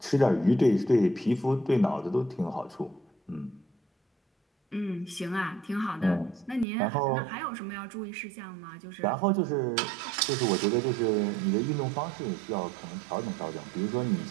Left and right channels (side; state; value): left; drops out; at 6.7 s